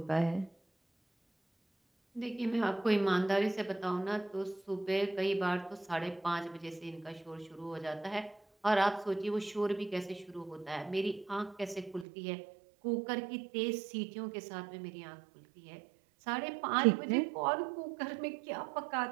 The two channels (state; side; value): drops out; left; at 12.1 s